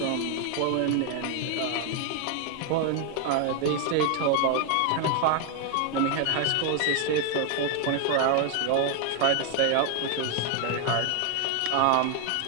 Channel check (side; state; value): both; different; correlation 0.00